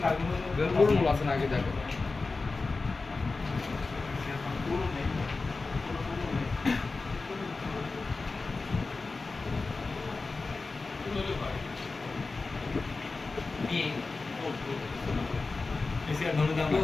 কালগুলো আছে না আগে দেখো। এসিআর ধরে দাম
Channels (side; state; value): right; quieter; 3.8 dB